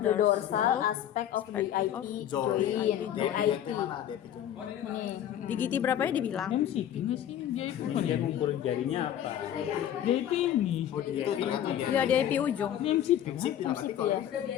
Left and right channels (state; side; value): quieter; right; 10.7 dB